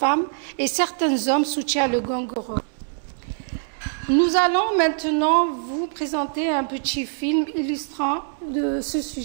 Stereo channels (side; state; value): left; silent; digital silence